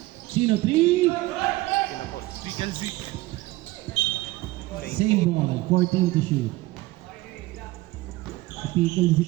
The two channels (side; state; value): left; quieter; 19.2 dB